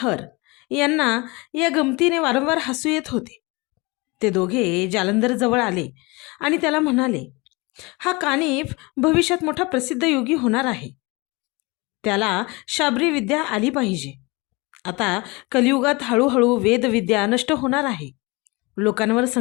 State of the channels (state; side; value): quieter; right; 25.7 dB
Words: यांना या गमतीने वारंवार हसू येत होते. ते दोघे जालंधर जवळ आले आणि त्याला म्हणाले, हा कानिफ भविष्यात मोठा प्रसिद्ध योगी होणार आहे. त्याला शाबरी विद्या आली पाहिजे. आता कलियुगात हळूहळू वेदविद्या नष्ट होणार आहे. लोकांवर